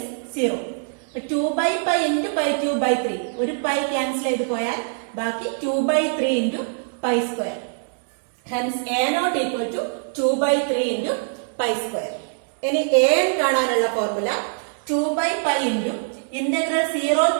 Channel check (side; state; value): left; silent; digital silence